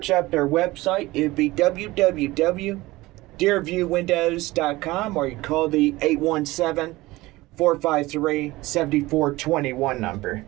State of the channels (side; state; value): left; quieter; 19.6 dB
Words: up their website, it'd be www.deerviewwindows.com, or you call the 817-453-7421 number.